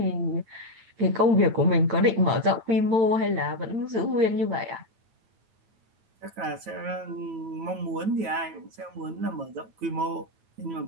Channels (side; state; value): left; late; 8.8 ms